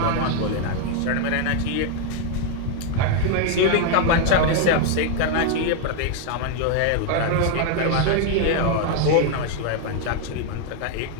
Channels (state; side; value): different; both; correlation 0.00